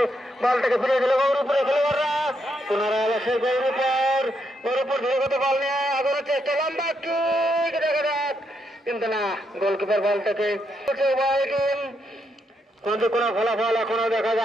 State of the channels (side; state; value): both; normal; correlation 0.79